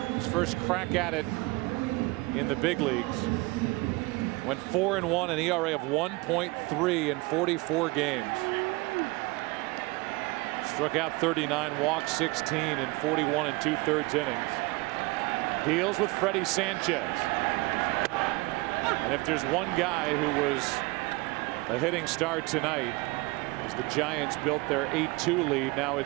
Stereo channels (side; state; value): left; quieter; 23.9 dB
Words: his first crack at it in the big leagues, went 4-1, an ERA of 1.3 in 44 games. Struck out 39, walked 16 in 41 2/3 innings. Deals with Freddie Sanchez. And if there's one guy who was a hitting star tonight, as the Giants built their 8-2 lead, now